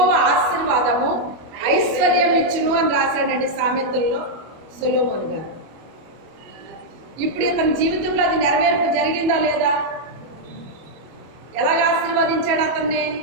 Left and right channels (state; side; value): late; left; 25 ms